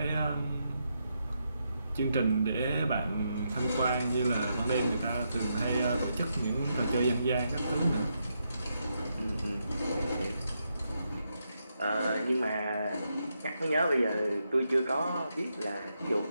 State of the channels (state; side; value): inverted; both; correlation -0.82